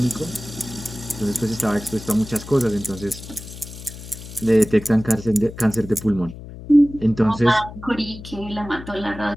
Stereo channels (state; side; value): noise; left; hum, 14 dB below the sound